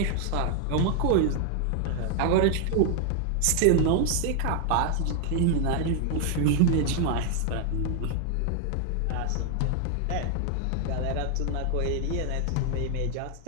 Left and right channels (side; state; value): both; different; correlation 0.00